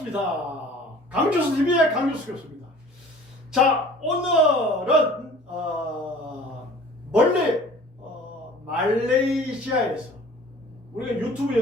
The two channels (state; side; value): normal; both; correlation 0.47